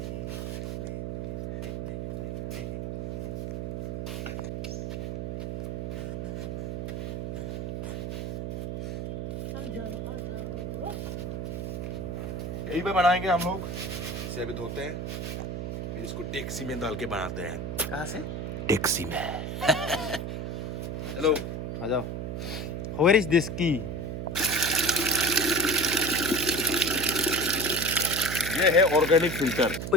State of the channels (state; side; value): noise; right; hum, 4 dB below the sound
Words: यही पे बनाएंगे हम लोग। इसे अभी धोते हैं, फिर इसको टैक्सी में डाल के बनाते हैं। कहाँ से? टैक्सी में। चलो आ जाओ। वेयर इज दिस की? ये है ऑर्गेनिक फिल्टर।